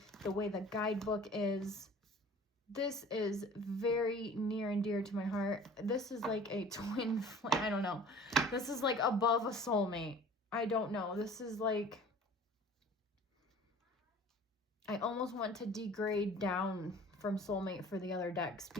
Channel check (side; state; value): both; normal; correlation 0.46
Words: the way the guidebook is, this is very near and dear to my heart. This is like a twin flame. I don't know. This is like above a soulmate. I don't know. This is like, I almost want to degrade down from soulmate for the other decks,